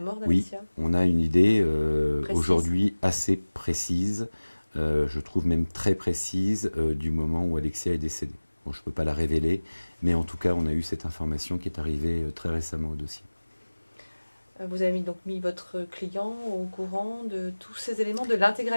Oui, d'Alexia? on a une idée aujourd'hui assez précise, je trouve même très précise, du moment où Alexia est décédée. Bon, je ne peux pas la révéler, mais en tout cas, on a eu cette information qui est arrivée très récemment au dossier. Vous avez donc mis votre client au courant de tous ces éléments, de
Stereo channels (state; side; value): inverted; both; correlation -1.00